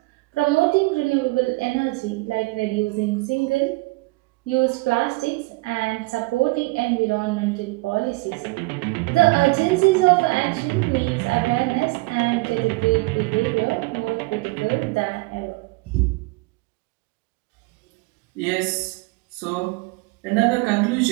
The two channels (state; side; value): quieter; left; 24.2 dB